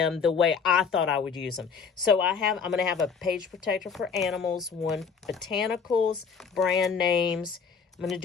the way I thought I would use them. So I'm going to have a page protector for animals, one botanicals, brand names. I'm going to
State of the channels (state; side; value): quieter; right; 6.0 dB